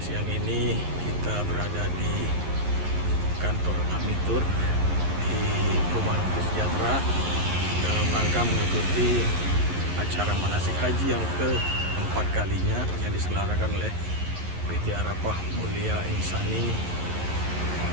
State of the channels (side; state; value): left; late; 11 ms